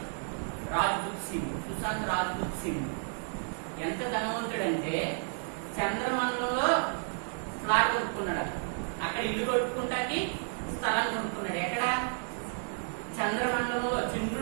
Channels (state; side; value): silent; left; 57 dB below the other